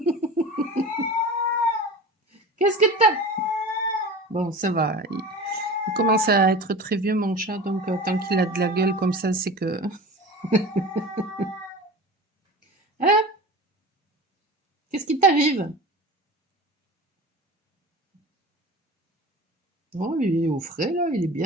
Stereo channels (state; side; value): normal; both; correlation 0.34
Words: Qu'est-ce que tu Bon, ça va, il commence à être très vieux mon chat, donc tant qu'il a de la gueule comme ça, c'est que hein? Qu'est-ce qui t'arrive? Oh, il est au frais là, il est